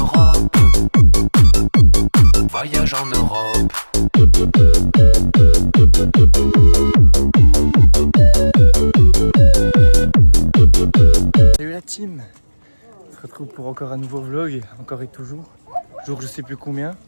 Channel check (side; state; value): both; inverted; correlation -1.00